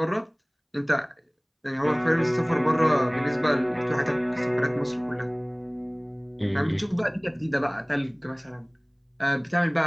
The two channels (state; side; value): identical; both; correlation 1.00